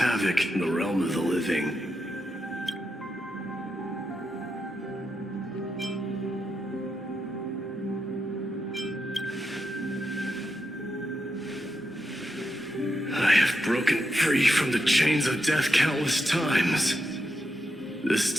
in the realm of the living. I have broken free from the chains of death countless times. This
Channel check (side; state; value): both; normal; correlation 0.85